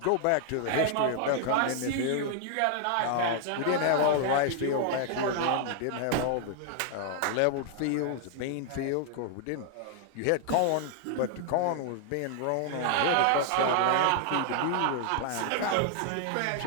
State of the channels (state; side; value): different; both; correlation 0.00